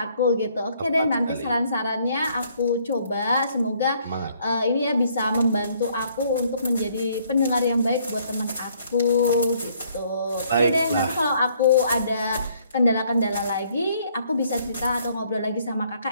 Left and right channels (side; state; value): both; inverted; correlation -0.65